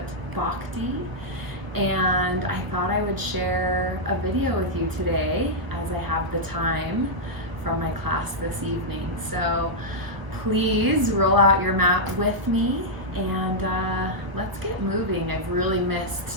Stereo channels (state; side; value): late; left; 1.0 ms